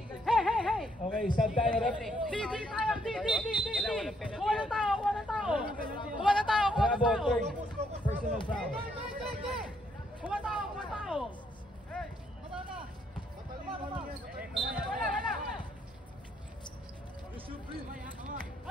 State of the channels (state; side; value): normal; both; correlation 0.71